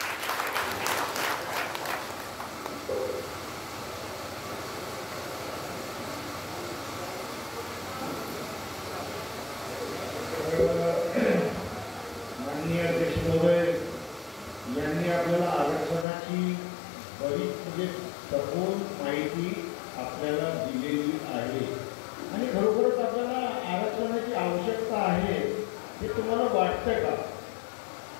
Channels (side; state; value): right; drops out; at 16.1 s